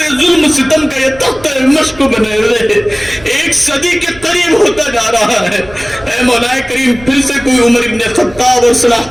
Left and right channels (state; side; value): noise; right; rumble, 20 dB below the sound